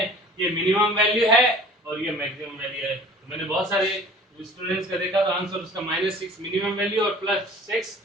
ये मिनिमम वैल्यू है और ये मैक्सिमम वैल्यू है। तो मैंने बहुत सारे स्टूडेंट्स का देखा, तो आंसर उसका -6 मिनिमम वैल्यू और +6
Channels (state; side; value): normal; both; correlation 0.46